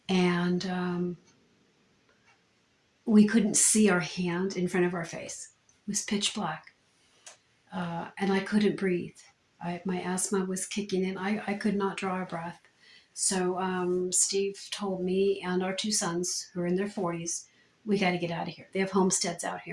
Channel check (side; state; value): both; identical; correlation 1.00